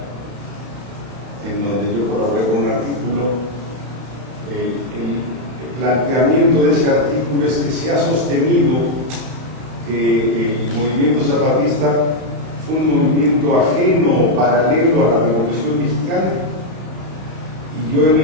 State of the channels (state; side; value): late; left; 31 ms